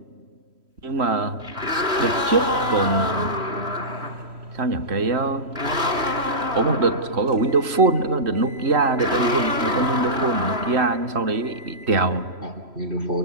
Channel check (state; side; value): late; left; 3.1 ms